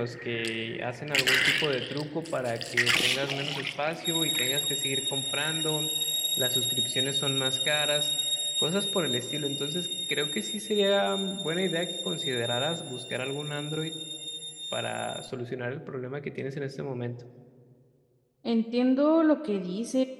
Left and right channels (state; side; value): identical; both; correlation 1.00